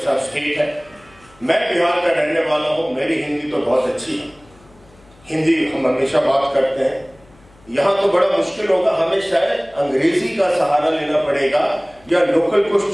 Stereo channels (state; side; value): noise; left; hum, 28 dB below the sound